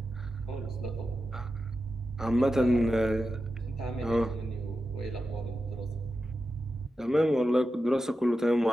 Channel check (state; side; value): normal; both; correlation 0.91